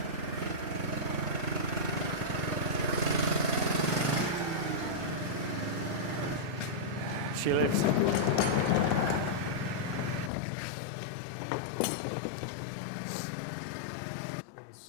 She lives. In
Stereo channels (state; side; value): drops out; right; at 10.3 s